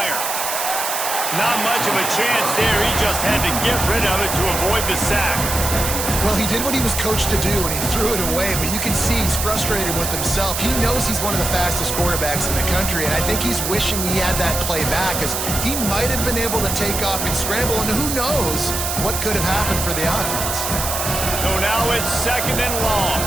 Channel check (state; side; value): noise; right; hiss, 2 dB below the sound